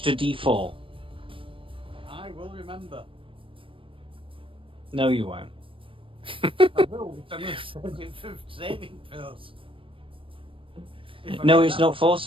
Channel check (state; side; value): late; left; 0.25 ms